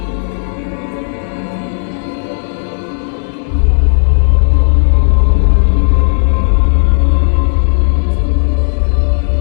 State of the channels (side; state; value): right; silent; digital silence